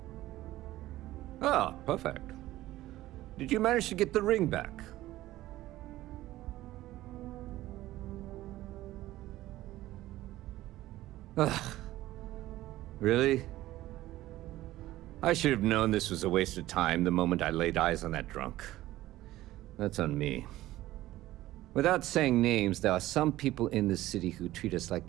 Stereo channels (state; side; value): quieter; left; 15.8 dB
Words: Ah, perfect. Did you manage to get the ring back? Ugh. Really? I should have known this was a waste of time the moment I laid eyes on that drunk. That's on me. Without saying names, there are some people in this city who treat us like